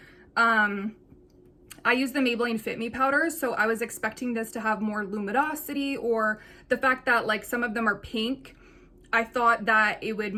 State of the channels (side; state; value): both; identical; correlation 1.00